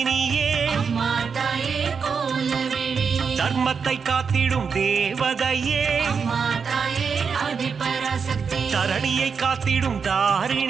அம்மா தாயே கோலவேணி தர்மத்தை காத்திடும் தேவதையே அம்மா தாயே ஆதிபராசக்தி தரணியை காத்திடும்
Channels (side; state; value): left; quieter; 5.9 dB